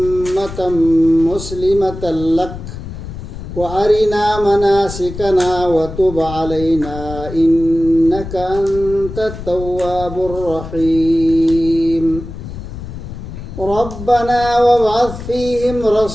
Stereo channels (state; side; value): noise; left; rumble, 10 dB below the sound